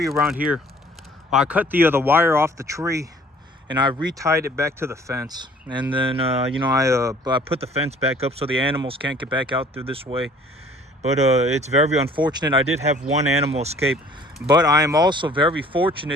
around here. I cut the wire off the tree, and I retied it back to the fence. And then I put the fence back up so the animals can't get back out through this way. But it's very unfortunate. I did have 1 animal escape, but I am also very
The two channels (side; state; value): both; normal; correlation 0.53